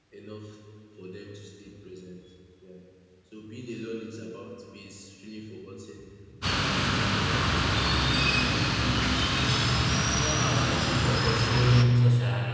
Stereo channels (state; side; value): identical; both; correlation 1.00